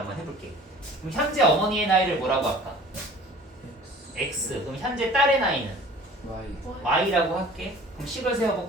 해볼게. 그럼 현재 어머니의 나이를 뭐라고 할까? x. 그럼 현재 딸의 나이는 y y라고 할게. 그럼 식을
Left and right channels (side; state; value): both; normal; correlation 0.47